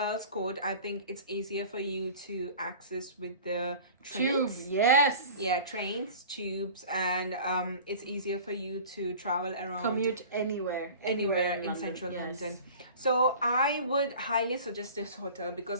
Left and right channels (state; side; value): inverted; both; correlation -0.41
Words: Court, I think it's easier for you to access with the Tube, trains. yes. Yeah, trains, tubes, and it's easier for you to travel around. Commute anywhere Anywhere in London, central yes. London. So I would highly suggest this hotel